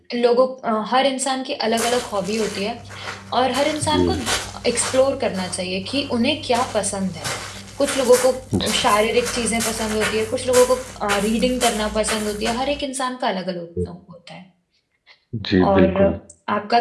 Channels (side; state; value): both; identical; correlation 1.00